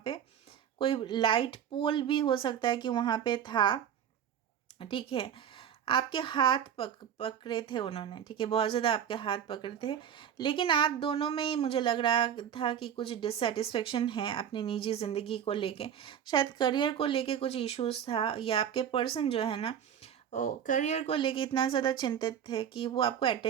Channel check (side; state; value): left; quieter; 9.0 dB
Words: पे कोई लाइट पोल भी हो सकता है कि वहाँ पे था, ठीक है। आपके हाथ पकड़े थे उन्होंने, ठीक है, बहुत ज़्यादा आपके हाथ पकड़े थे। लेकिन आप दोनों में ही मुझे लग रहा था कि कुछ डिससेटिस्फेक्शन है अपनी निजी ज़िंदगी को लेके, शायद करियर को लेके कुछ इश्यूज़ था, या आपके पर्सन जो है ना, करियर को लेके इतना ज़्यादा चिंतित थे कि वो आपको